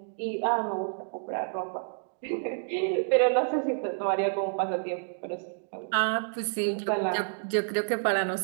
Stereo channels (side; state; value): left; silent; digital silence